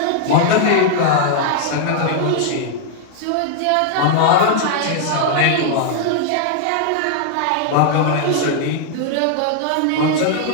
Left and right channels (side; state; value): both; different; correlation -0.01